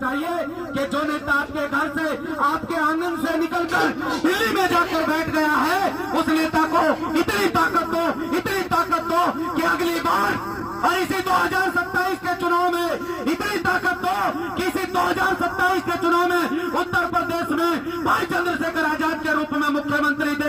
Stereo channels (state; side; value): identical; both; correlation 1.00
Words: चाहिए कि जो नेता आपके घर से, आपके आंगन से निकलकर दिल्ली में जाकर बैठ गया है, उस नेता को इतनी ताकत दो, इतनी ताकत दो कि अगली बार और इसी 2027 के चुनाव में इतनी ताकत दो कि इसी 2027 के चुनाव में उत्तर प्रदेश में भाई चंद्रशेखर आजाद के रूप में मुख्यमंत्री